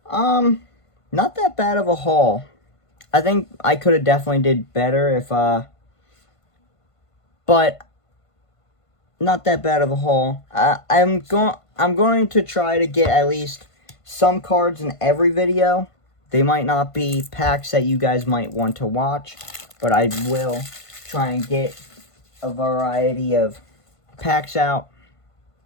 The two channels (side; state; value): right; late; 1.5 ms